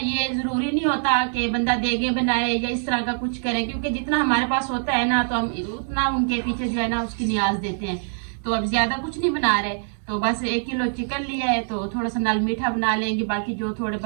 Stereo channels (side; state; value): left; silent; digital silence